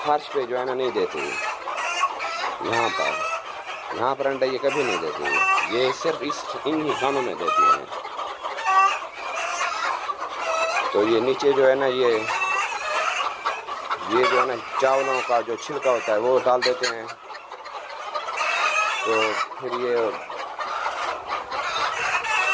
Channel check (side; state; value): both; identical; correlation 1.00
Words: पे जो है ना नहीं देती है, यहाँ पर अंडे ये कभी नहीं देती है, ये सिर्फ इन ही खानों में देती हैं। तो ये नीचे जो है ना ये जो है ना चावलों का जो छिलका होता है वो डाल देते हैं। तो फिर ये